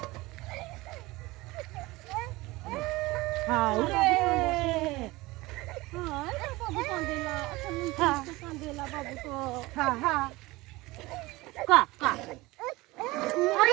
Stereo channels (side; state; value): left; quieter; 20.8 dB